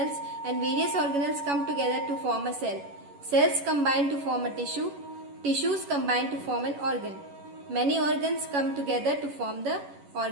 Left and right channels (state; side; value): late; left; 11 ms